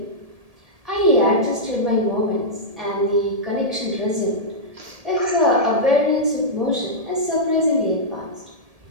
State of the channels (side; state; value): left; late; 1.7 ms